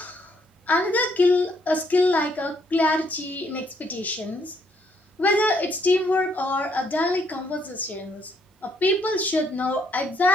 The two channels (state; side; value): normal; both; correlation 0.70